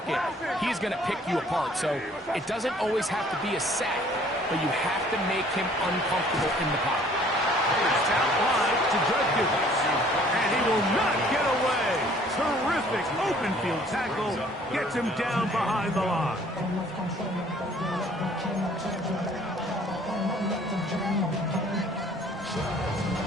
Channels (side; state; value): both; normal; correlation 0.56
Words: he's going to pick you apart. So it doesn't always have to be a sack, but you have to make him uncomfortable in the pocket. It's out wide to Judkins, and he will not get away. Terrific open field tackle gets him down behind the line.